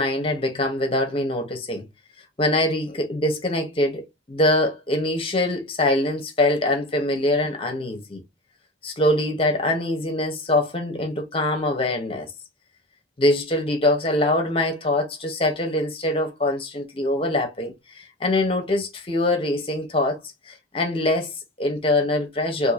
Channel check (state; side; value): normal; both; correlation 0.29